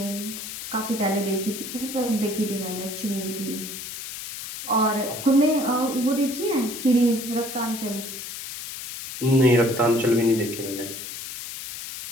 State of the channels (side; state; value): left; noise; hiss, 9 dB below the sound